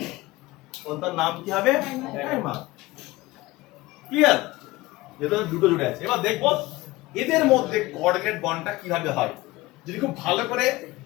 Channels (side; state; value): right; quieter; 19.6 dB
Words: তার নাম কি হবে? ডাইমার। ক্লিয়ার? যেহেতু দুটো জুড়ে আছে, এবার দেখবো এদের মধ্যে কোঅর্ডিনেট বন্ডটা কিভাবে হয়। যদি খুব ভালো করে